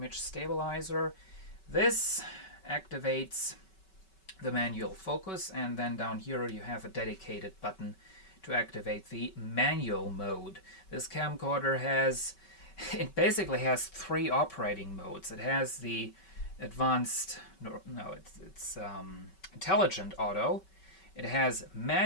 Stabilizer. This activates the manual focus, and then down here you have a dedicated button to activate the manual mode. This camcorder basically has 3 operating modes. It has the advanced, it's intelligent auto, it has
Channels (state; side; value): late; right; 5.3 ms